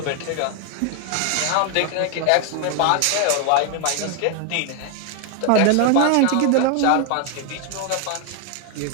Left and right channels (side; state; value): both; different; correlation 0.00